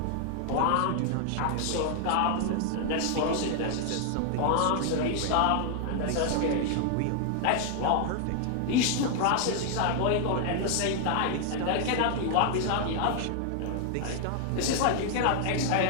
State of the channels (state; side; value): different; both; correlation 0.00